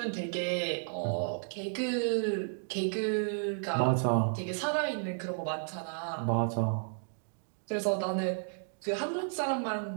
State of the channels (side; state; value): left; silent; digital silence